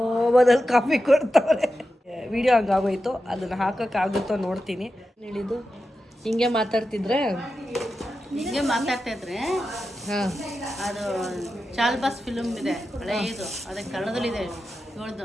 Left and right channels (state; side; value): normal; both; correlation 0.91